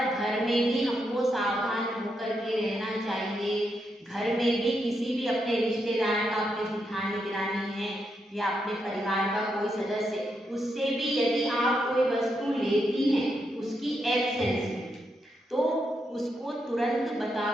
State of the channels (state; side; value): normal; both; correlation 0.82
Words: घर में भी हमको सावधान होकर के रहना चाहिए। घर में भी किसी भी अपने रिश्तेदार का, अपने जेठानी दिरानी है या अपने परिवार का कोई सदस्य, उससे भी यदि आप कोई वस्तु लेती हैं उसकी एब्सेंस में, तो उसको तुरंत बता